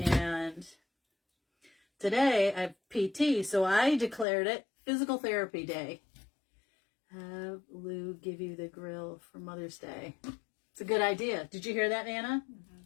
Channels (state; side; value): drops out; right; at 4.2 s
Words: today I have PT, so I declared it physical therapy day. Have Lou give you the grill for Mother's Day. It's a good idea. Did you hear that, Nana?